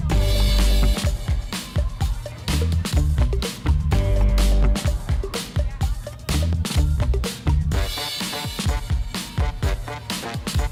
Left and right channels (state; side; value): identical; both; correlation 1.00